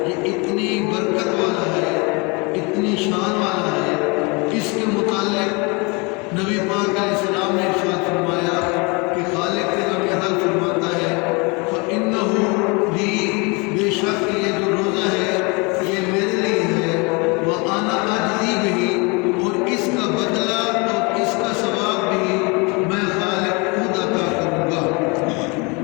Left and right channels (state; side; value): quieter; right; 29.4 dB